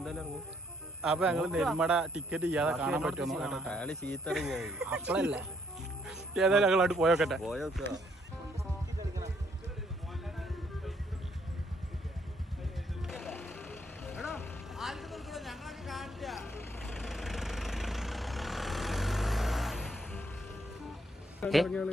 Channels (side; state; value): both; normal; correlation 0.69